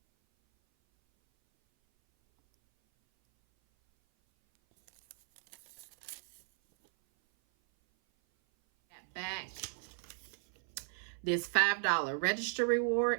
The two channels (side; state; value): left; silent; 54 dB below the other